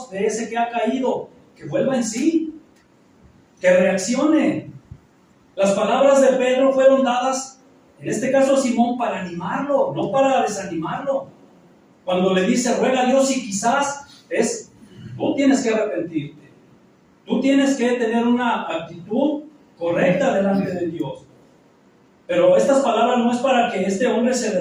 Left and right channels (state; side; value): identical; both; correlation 1.00